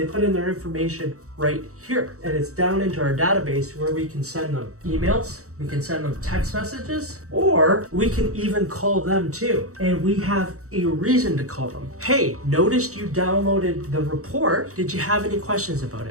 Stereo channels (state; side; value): late; left; 0.65 ms